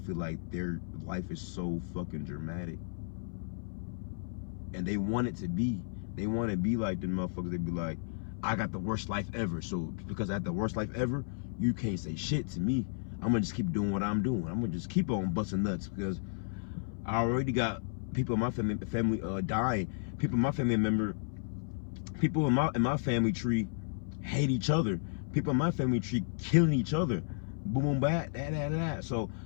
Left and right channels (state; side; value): silent; right; 56 dB below the other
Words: feel like their life is so fucking dramatic, and they want it to be. They want to be like the motherfuckers. They be like, I got the worst life ever, so because I had the worst life ever, you can't say shit to me. I'm gonna just keep doing what I'm doing. I'm gonna just keep on busting nuts because I already got people in my family dying. People in my family people in my family tree hate each other. People in my family tree killing each other. Boom, boom, bat, that. So